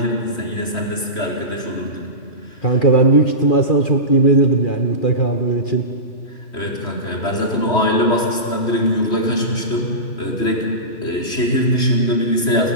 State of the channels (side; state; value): right; late; 3.2 ms